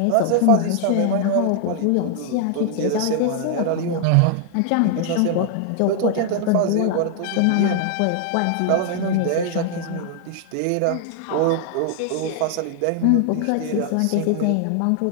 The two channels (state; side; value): different; both; correlation 0.00